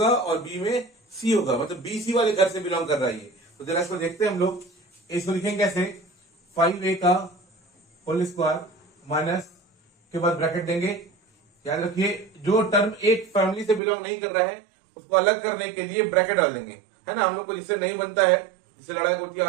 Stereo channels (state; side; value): drops out; left; at 13.8 s